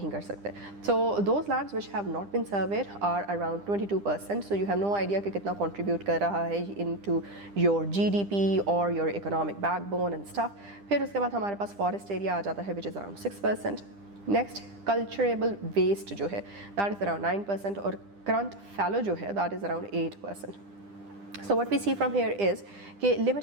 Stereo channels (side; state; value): left; late; 10 ms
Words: कर सकते। So those lands which have not been surveyed are around 22%। So you have no idea कि कितना कंट्रीब्यूट कर रहा है इनटू योर जीडीपी और your economic backbone and stuff. फिर उसके बाद हमारे पास फॉरेस्ट एरिया आ जाता है which is around 6%। Next culturable waste जो है दैट इज़ अराउंड 9% और करंट फैलो जो है that is around 8%। So what we see from here is कि